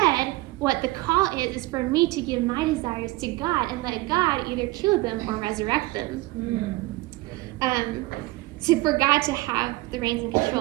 what the call is for me to give my desires to God and let God either kill them or resurrect them. So for God to have the reins and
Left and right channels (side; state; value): left; quieter; 20.5 dB